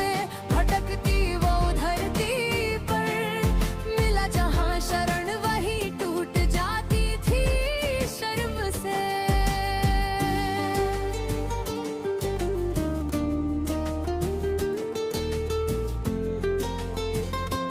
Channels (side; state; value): both; identical; correlation 1.00